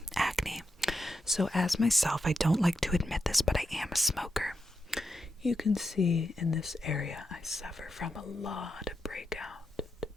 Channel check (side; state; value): both; normal; correlation 0.86